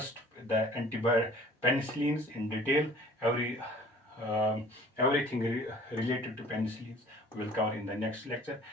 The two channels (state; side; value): normal; both; correlation 0.49